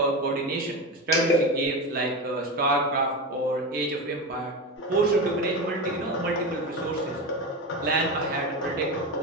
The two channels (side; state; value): both; normal; correlation 0.20